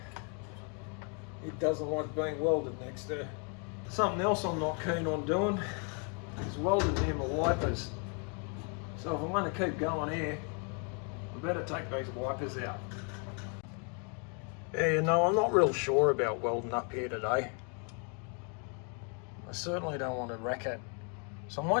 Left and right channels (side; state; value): right; quieter; 38.5 dB